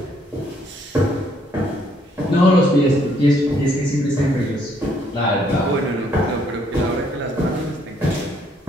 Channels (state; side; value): normal; both; correlation 0.68